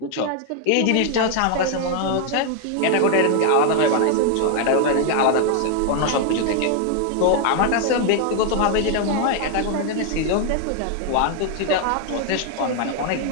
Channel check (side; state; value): both; different; correlation 0.00